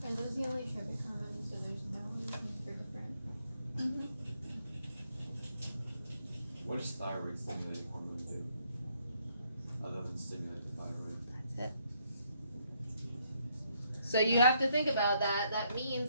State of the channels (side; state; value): both; inverted; correlation -0.72